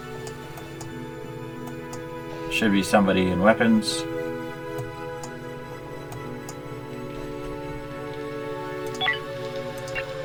Should be somebody in weapons.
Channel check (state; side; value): identical; both; correlation 1.00